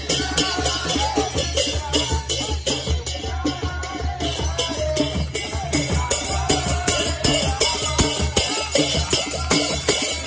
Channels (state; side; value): identical; both; correlation 1.00